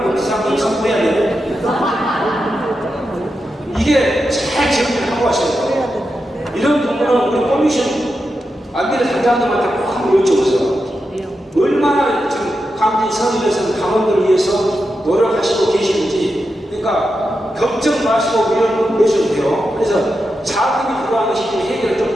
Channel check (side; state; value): both; normal; correlation 0.88